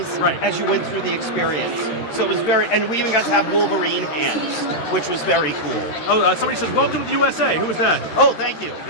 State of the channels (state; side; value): late; right; 13 ms